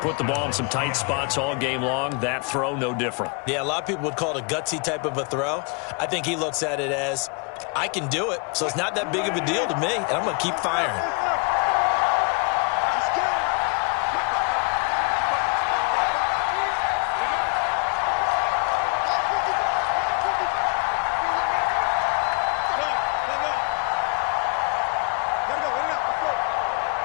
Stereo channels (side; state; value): right; quieter; 35.3 dB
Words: the ball in some tight spots all game long. That throw, no different. Yeah, a lot of people would call it a gutsy type of a throw. I think he looks at it as, I can do it, so it's not that big of a deal to me, and I'm going to keep firing.